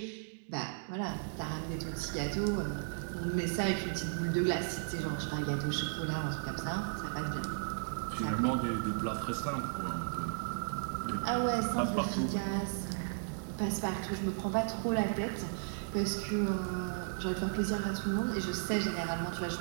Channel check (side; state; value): left; silent; digital silence